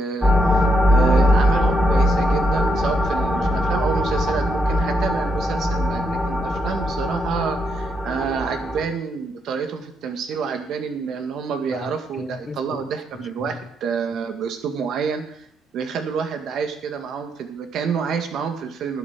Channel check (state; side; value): normal; both; correlation 0.78